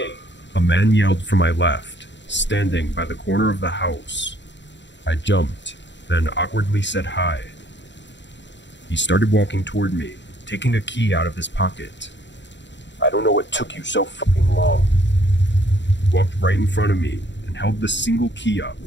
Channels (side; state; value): right; late; 0.52 ms